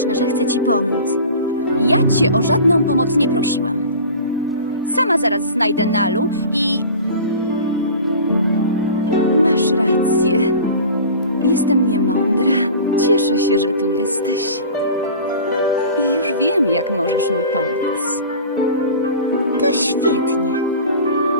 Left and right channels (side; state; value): both; inverted; correlation -0.38